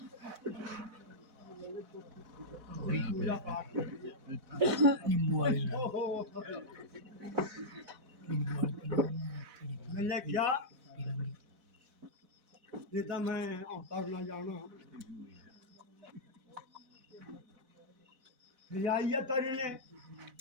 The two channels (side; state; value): left; late; 4.0 ms